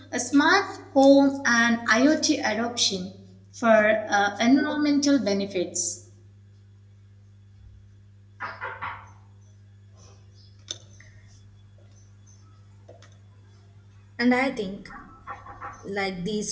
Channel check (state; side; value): identical; both; correlation 1.00